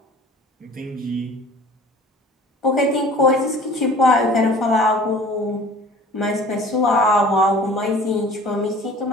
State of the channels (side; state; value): both; normal; correlation 0.46